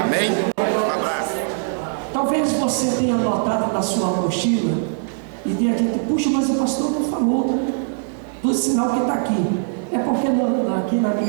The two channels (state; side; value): silent; left; digital silence